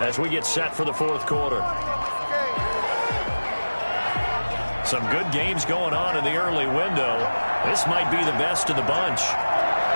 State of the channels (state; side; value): inverted; both; correlation -1.00